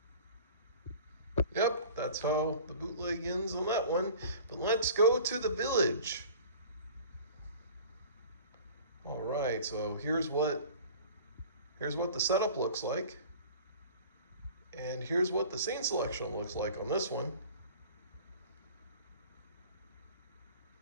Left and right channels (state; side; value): inverted; both; correlation -0.44